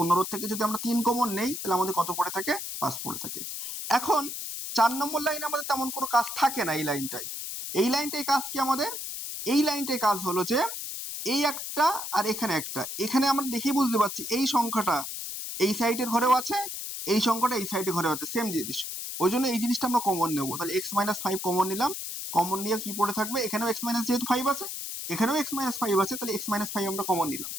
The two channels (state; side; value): noise; left; hiss, 6 dB below the sound